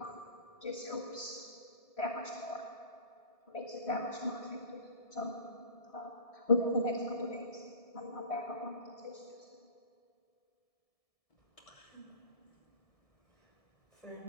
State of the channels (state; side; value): late; right; 1.7 ms